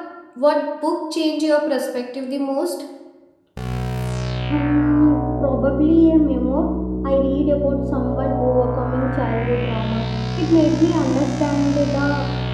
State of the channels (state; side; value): identical; both; correlation 1.00